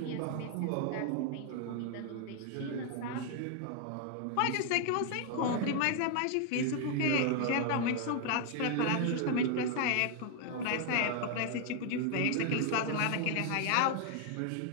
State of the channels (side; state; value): both; different; correlation 0.00